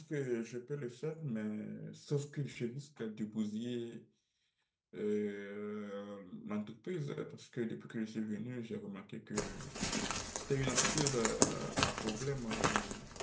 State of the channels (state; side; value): identical; both; correlation 1.00